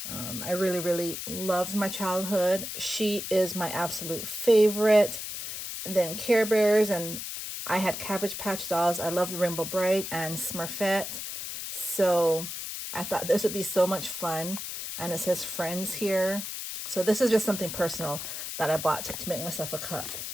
I really loved my childhood. She is my absolute favorite. And then Care Bears, and I had Cabbage Patch dolls. I loved Rainbow Bright and Smurfette. So I thought this would be so much fun. And it says friends here. So this is just something personal that I bought to make myself a cup.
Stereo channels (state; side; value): noise; left; hiss, 6 dB below the sound